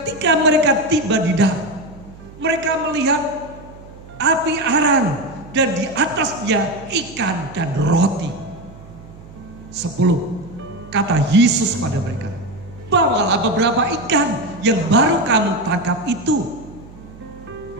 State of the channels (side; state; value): right; noise; hum, 19 dB below the sound